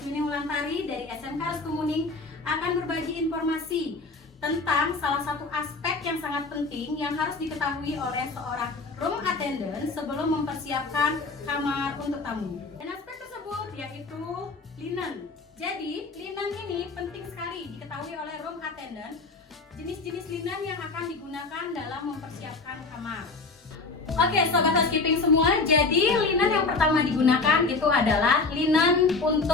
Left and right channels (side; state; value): right; quieter; 3.9 dB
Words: Mulantari dari SMK Reskemuning akan berbagi informasi tentang salah satu aspek yang sangat penting yang harus diketahui oleh seorang room attendant sebelum mempersiapkan kamar untuk tamu. Dan aspek tersebut yaitu linen. Jadi, linen ini penting sekali diketahui oleh room attendant. Jenis-jenis linen yang akan digunakan dalam mempersiapkan kamar. Oke, sobat housekeeping semua, jadi linen yang pertama digunakan itu adalah linen